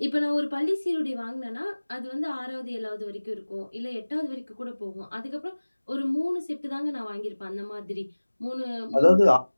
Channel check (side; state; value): both; inverted; correlation -1.00